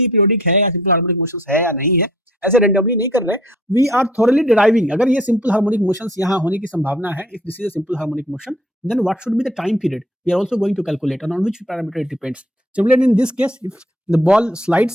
पीरियोडिक है या सिंपल हार्मोनिक मोशंस है या नहीं है, ऐसे रेंडमली नहीं कर रहे। वी आर थोरली डिराइविंग, अगर ये सिंपल हार्मोनिक मोशंस यहाँ होने की संभावना है, if this is a simple harmonic motion, then what should be the time period we are also going to calculate, and on which parameter it depends. Similarly, in this case, if the ball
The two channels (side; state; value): both; normal; correlation 0.57